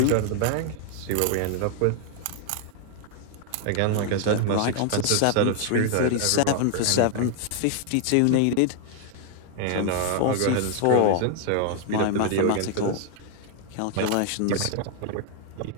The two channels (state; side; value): different; both; correlation 0.00